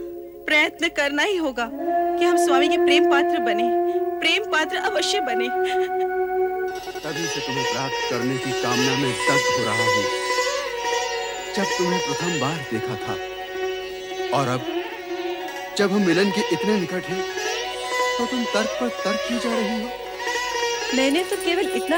प्रयत्न करना ही होगा कि हम स्वामी के प्रेम पात्र बने, प्रेम पात्र अवश्य बने। तभी से तुम्हें प्राप्त करने की कामना में दग्ध हो रहा हूँ। जब तुम्हें प्रथम बार देखा था और अब जब हम मिलन के इतने निकट हैं, तो तुम तर्क पर तर्क की जा रही हो। मैंने तो केवल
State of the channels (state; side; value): identical; both; correlation 1.00